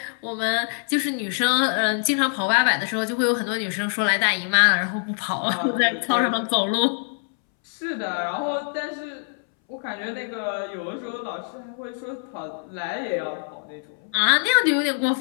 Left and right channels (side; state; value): right; silent; 62 dB below the other